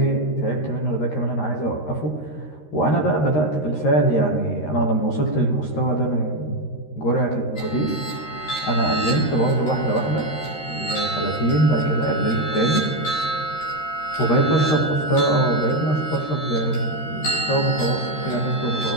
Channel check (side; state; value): right; late; 13 ms